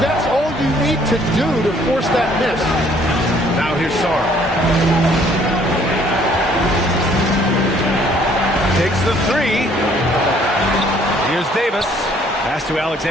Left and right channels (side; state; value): both; normal; correlation 0.61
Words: all you need to do to force that miss. Now here's Sarr. Takes the 3. Here's Davis. Pass to